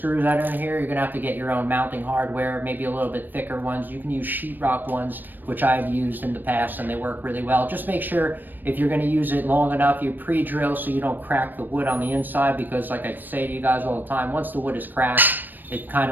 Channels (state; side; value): late; left; 0.091 ms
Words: that are in here. You're going to have to get your own mounting hardware, maybe a little bit thicker ones. You can use sheetrock ones, which I've used in the past, and they work really well. Just make sure if you're going to use it long enough, you pre-drill so you don't crack the wood on the inside, because like I say to you guys all the time, once the wood is cracked, it kind